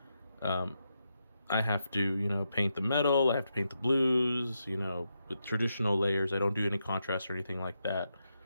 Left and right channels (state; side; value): inverted; both; correlation -0.84